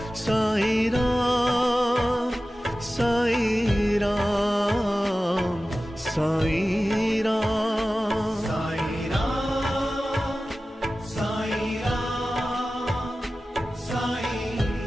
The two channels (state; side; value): normal; both; correlation 0.95